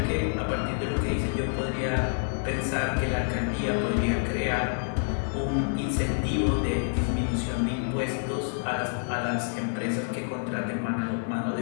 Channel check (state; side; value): silent; right; digital silence